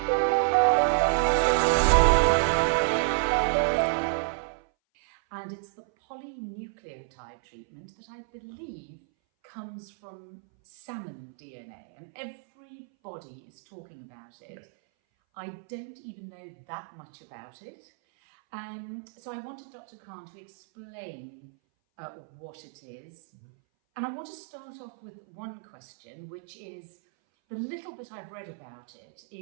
And it's the polynucleotide treatment that I believe comes from salmon DNA, and everybody is talking about it. Yes. I don't even know that much about it. So I wanted Dr. Khan to explain what it is. Mm-hmm. And I want to start off with one question, which is, the little bit I've read about it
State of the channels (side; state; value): left; silent; 58 dB below the other